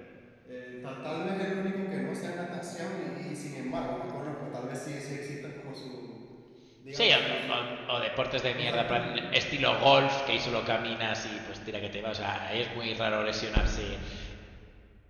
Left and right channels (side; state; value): both; identical; correlation 1.00